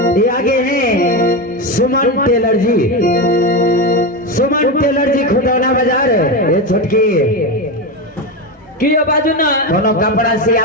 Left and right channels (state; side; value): normal; both; correlation 0.15